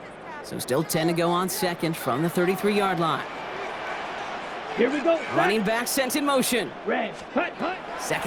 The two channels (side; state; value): both; identical; correlation 1.00